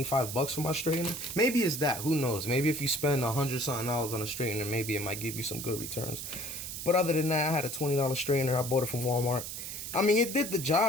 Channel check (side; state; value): right; noise; hiss, 7 dB below the sound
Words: bucks for my straightener. Maybe it's that. Who knows? Maybe if you spend $100-something on a straightener, maybe it might give you some good returns. But other than that, I had a $20 straightener. I bought it from Walmart. I mean, it did the